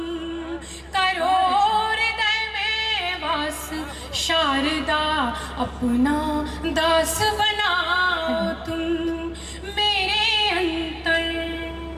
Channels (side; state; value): both; identical; correlation 1.00